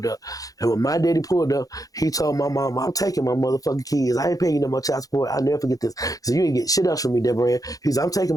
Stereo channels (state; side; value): late; right; 0.17 ms